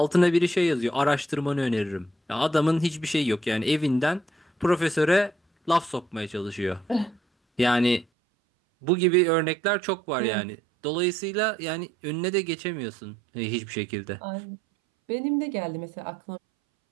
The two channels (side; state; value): left; drops out; at 8.1 s